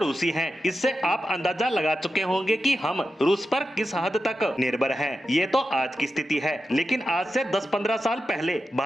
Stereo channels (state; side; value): normal; both; correlation 0.90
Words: हैं। इससे आप अंदाजा लगा चुके होंगे कि हम रूस पर किस हद तक निर्भर हैं। ये तो आज की स्थिति है, लेकिन आज से 10-15 साल पहले